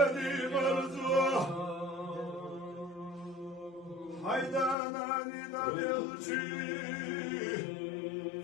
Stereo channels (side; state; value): right; drops out; at 4.8 s